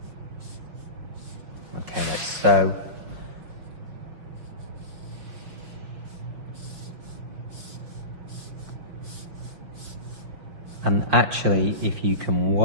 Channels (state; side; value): late; left; 6.2 ms